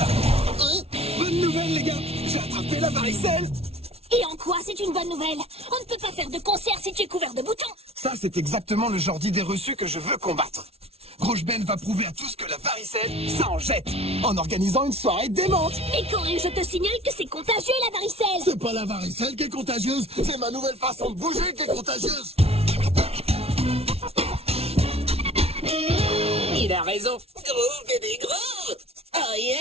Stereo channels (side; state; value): left; late; 0.30 ms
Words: Bonne nouvelle, les gars! J'ai attrapé la varicelle! Et en quoi c'est une bonne nouvelle? On ne peut pas faire de concert si tu es couvert de boutons. Ça, c'est exactement le genre d'idée reçue que je veux combattre. Rouge Ben va prouver à tous que la varicelle, ça en jette, en organisant une soirée démente. Mais Corée, je te signale que c'est contagieux la varicelle. C'est pas la varicelle qui est contagieuse, c'est ma nouvelle façon de bouger qui est contagieuse. Il a raison. Gros, bébé, gros. Oh